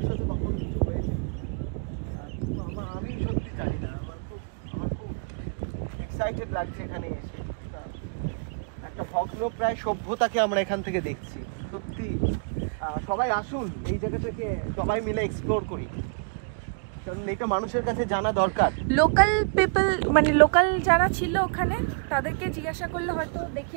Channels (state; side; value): quieter; left; 39.4 dB